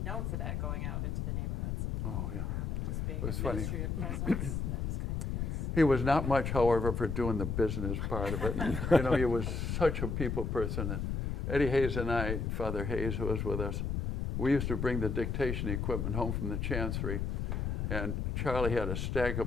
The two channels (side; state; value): left; noise; rumble, 1 dB below the sound